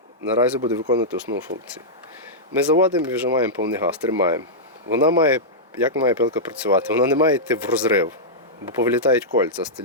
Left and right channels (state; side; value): normal; both; correlation -0.11